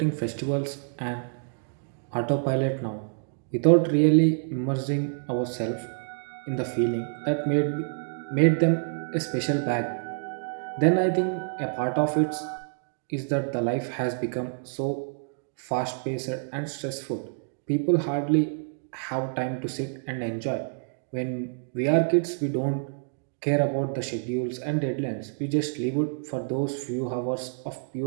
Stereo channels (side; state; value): left; silent; digital silence